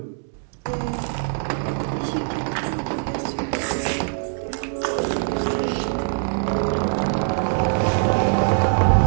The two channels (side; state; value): left; silent; digital silence